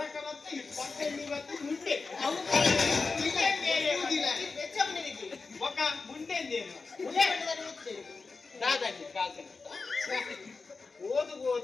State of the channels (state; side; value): quieter; right; 4.3 dB